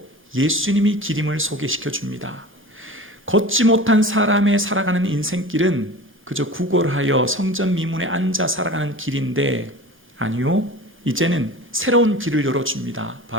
예수님이 길임을 소개시켜 줍니다. 걷지 못한 사람의 살아가는 인생길은 그저 구걸하여 성전 미문에 앉아 살아가는 길인데, 아니요, 이제는 새로운 길을 열어줍니다.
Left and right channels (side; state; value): both; normal; correlation 0.36